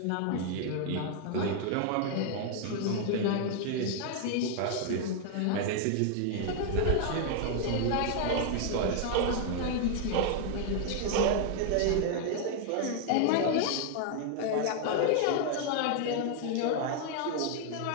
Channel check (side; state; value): both; different; correlation 0.00